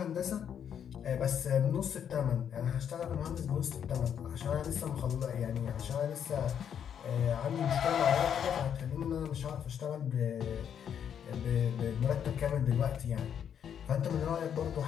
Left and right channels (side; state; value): right; quieter; 8.5 dB